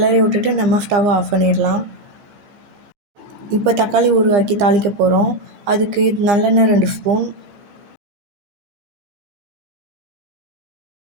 விட்டுட்டு நம்ம ஸ்டவ் ஆஃப் பண்ணிடலாம். இப்போ தக்காளி ஊறுகாய்க்கு தாளிக்க போகிறோம். அதுக்கு நல்லெண்ணெய் 2 ஸ்பூன்,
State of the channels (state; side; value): late; left; 15 ms